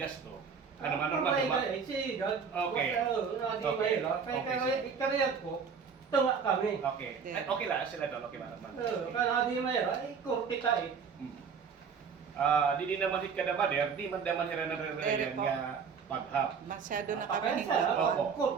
gasto. Ano Mano Armando? Okay. Okay. Ikariyat ko, tunga kami. Okay. Okay lang sila doon. Okay Mano Armando. Kaya di mayroon, ay kurti ka eh. Di naman hit ka na ba di man daman hira na rin nga paghap. Masyado na Kaya kami sa Opo.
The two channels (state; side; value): quieter; left; 6.1 dB